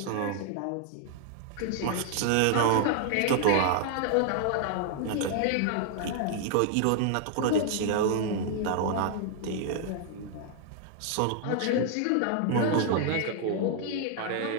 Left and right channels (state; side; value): different; both; correlation 0.00